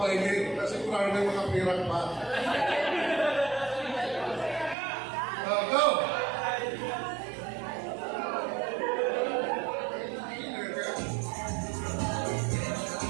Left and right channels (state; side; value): drops out; left; at 4.8 s